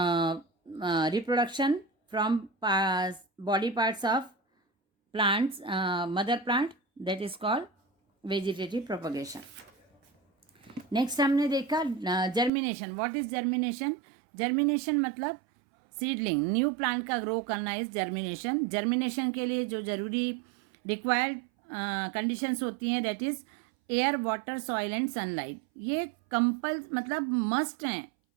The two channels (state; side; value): drops out; left; at 12.5 s